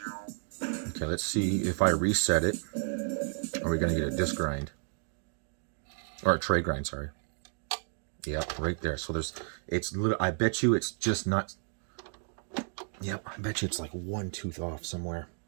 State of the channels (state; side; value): silent; left; 56 dB below the other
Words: Okay, let's see if I reset it. Are we going to get a disc grind? Or a tray grind, sorry. Yep, right there. So there's, it's little, I bet you it's just not, yep, I bet you it's like one tooth off somewhere.